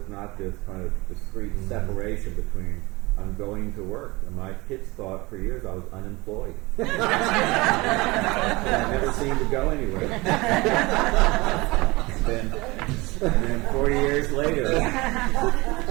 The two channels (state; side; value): quieter; left; 23.1 dB